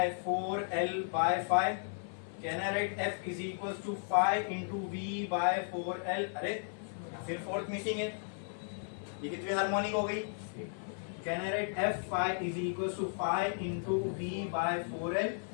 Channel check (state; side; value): silent; right; 54 dB below the other